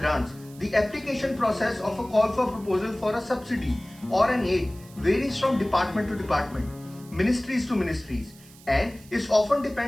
the application process of a call for proposal for a subsidy or an aid varies from department to department, ministries to ministries, and it often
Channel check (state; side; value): noise; right; hiss, 23 dB below the sound